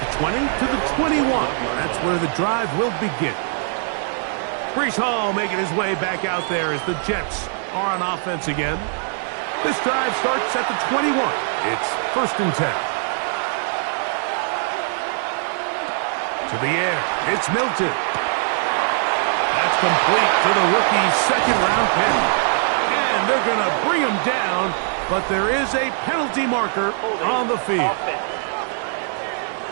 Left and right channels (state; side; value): silent; left; 65 dB below the other